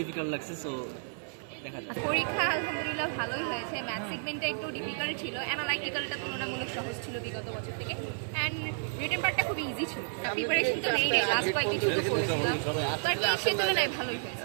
ডিফিকাল্ট লাগছে, সো দেখা যাক। পরীক্ষা আলহামদুলিল্লাহ ভালোই হয়েছে। ম্যাথ সেগমেন্টটা একটু ডিফিকাল্ট ছিল, অ্যানালাইটিক্যালটা তুলনামূলক সহজ ছিল বিগত বছর থেকে, অ্যান্ড রিটেন পার্টটা খুব ইজি ছিল। প্রিপারেশন তো নেই লাস্ট কয়েকদিন শুরু করেছিলাম, বাট সে তুলনায় ভালোই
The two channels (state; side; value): silent; left; 57 dB below the other